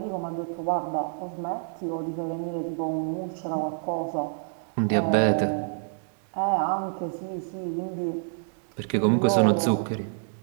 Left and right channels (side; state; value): left; silent; digital silence